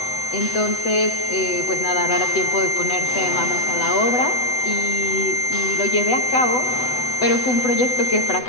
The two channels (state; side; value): late; right; 8.0 ms